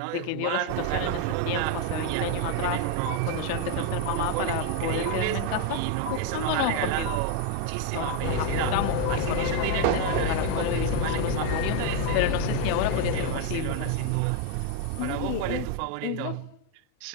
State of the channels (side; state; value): both; different; correlation 0.01